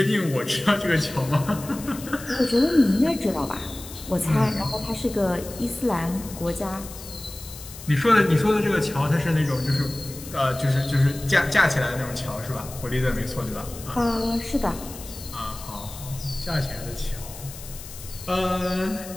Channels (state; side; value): noise; left; hiss, 14 dB below the sound